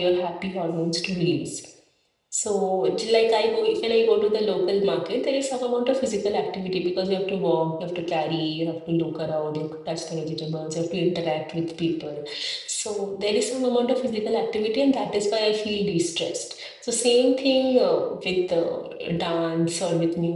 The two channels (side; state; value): both; identical; correlation 1.00